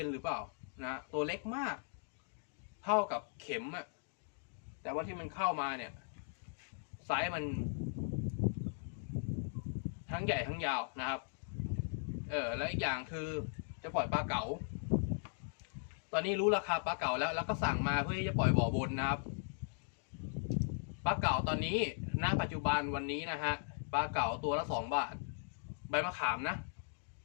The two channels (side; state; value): right; silent; digital silence